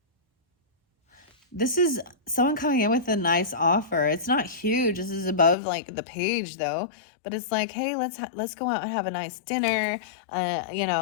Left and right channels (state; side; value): drops out; right; at 5.6 s